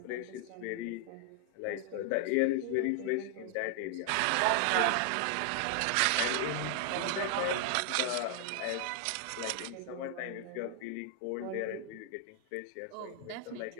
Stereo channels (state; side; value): different; both; correlation 0.00